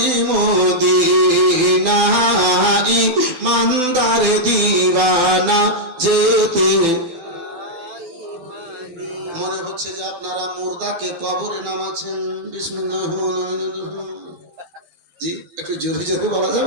মদিনা, ইমানদার দিওয়ানা যেতে। মনে হচ্ছে যে আপনারা মুর্দাকে কবরে নামাচ্ছেন। বিসমিল্লাহির রহমানির রহিম। জি একটু জোরে জোরে বলা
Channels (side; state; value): left; late; 12 ms